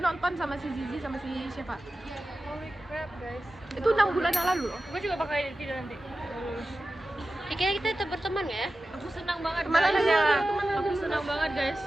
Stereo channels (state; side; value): normal; both; correlation 0.94